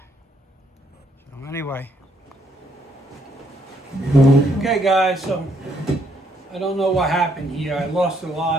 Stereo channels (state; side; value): normal; both; correlation 0.71